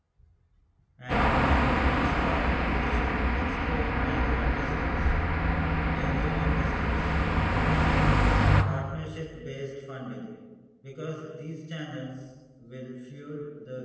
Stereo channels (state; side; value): identical; both; correlation 1.00